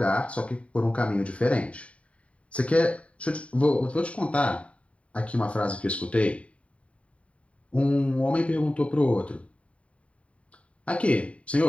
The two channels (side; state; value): right; late; 0.064 ms